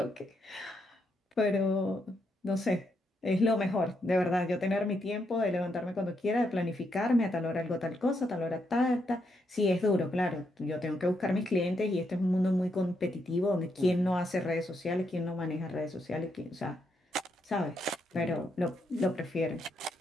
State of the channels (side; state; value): both; normal; correlation 0.79